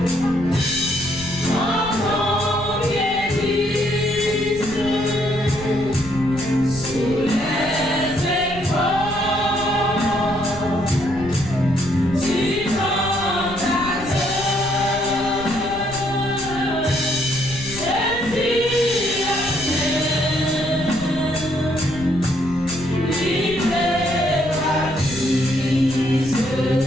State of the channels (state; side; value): noise; left; rumble, 14 dB below the sound